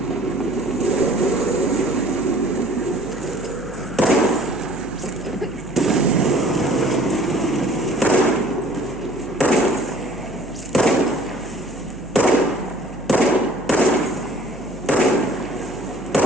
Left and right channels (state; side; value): noise; right; hum, 17 dB below the sound